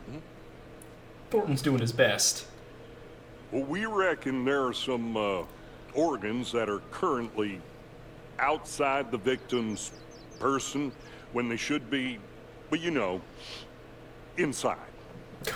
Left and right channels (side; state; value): both; identical; correlation 1.00